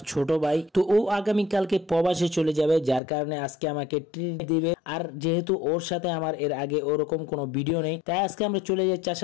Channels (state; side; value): drops out; right; at 3.0 s